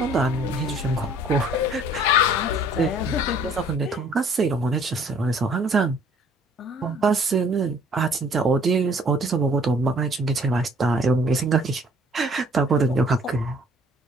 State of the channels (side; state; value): both; normal; correlation 0.56